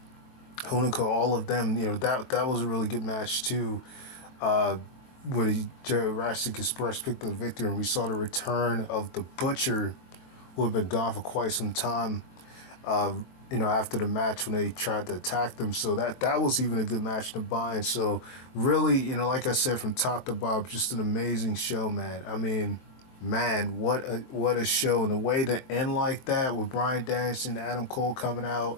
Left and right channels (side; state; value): right; late; 23 ms